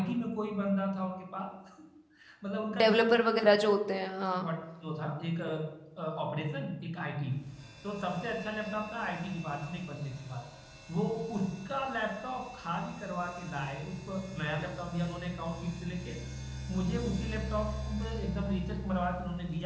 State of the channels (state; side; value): identical; both; correlation 1.00